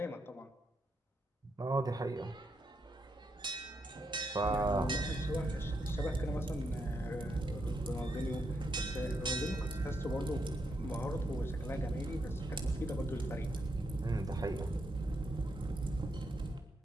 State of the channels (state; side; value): normal; both; correlation 0.80